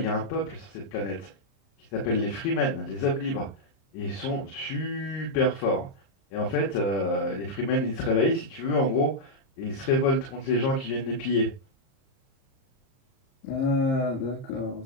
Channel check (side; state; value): right; late; 30 ms